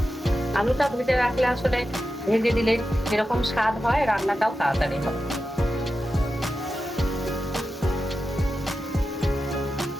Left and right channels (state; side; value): normal; both; correlation 0.91